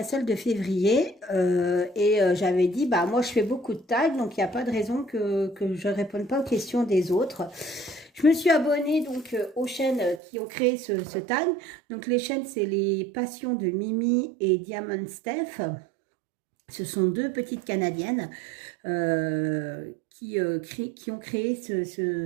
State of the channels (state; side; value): drops out; left; at 10.2 s